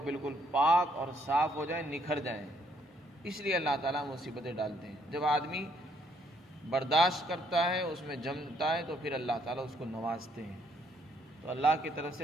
بالکل پاک اور صاف ہو جائیں، نکھر جائیں، اس لیے اللہ تعالیٰ مصیبتیں ڈالتے ہیں۔ جب آدمی برداشت کرتا ہے، اس میں جمتا ہے، تو پھر اللہ تعالیٰ اس کو نوازتے ہیں۔ تو اللہ کی طرف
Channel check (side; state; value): both; normal; correlation 0.69